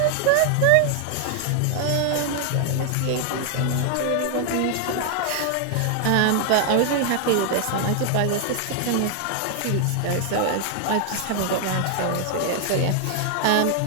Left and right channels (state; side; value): different; both; correlation 0.00